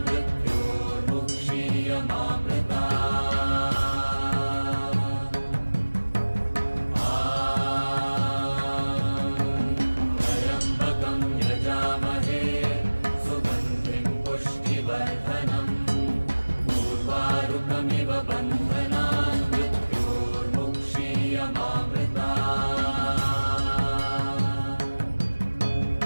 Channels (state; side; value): inverted; both; correlation -1.00